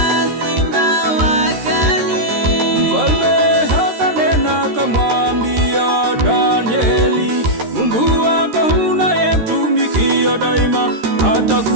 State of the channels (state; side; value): late; left; 13 ms